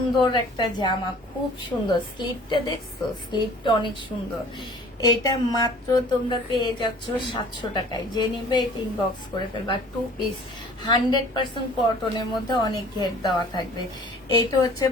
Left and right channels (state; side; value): normal; both; correlation 0.49